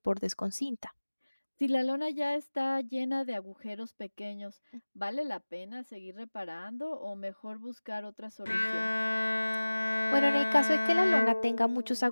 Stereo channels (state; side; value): inverted; both; correlation -1.00